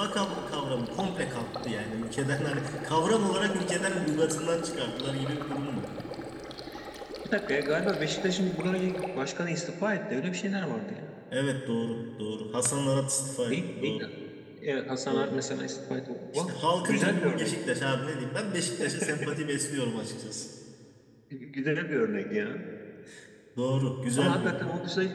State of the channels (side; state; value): both; identical; correlation 1.00